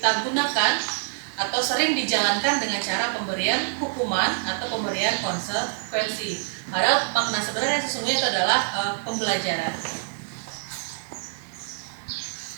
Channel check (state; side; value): silent; left; digital silence